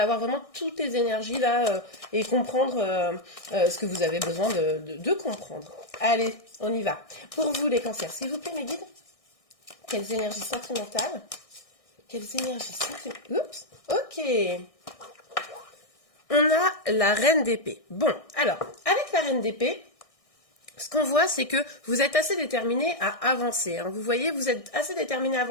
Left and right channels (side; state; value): right; late; 1.6 ms